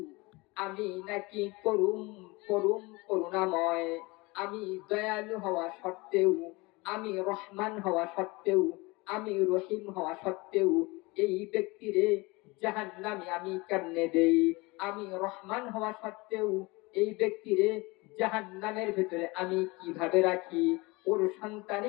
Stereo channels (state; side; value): quieter; right; 24.3 dB